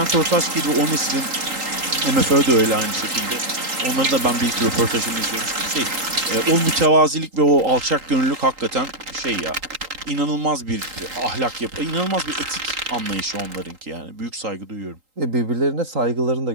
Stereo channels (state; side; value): late; left; 3.8 ms